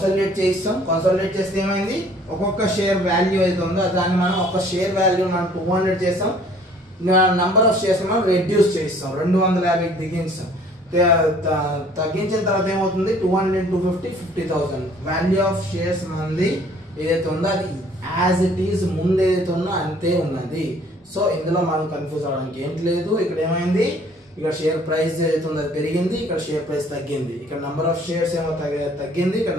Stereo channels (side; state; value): both; normal; correlation 0.56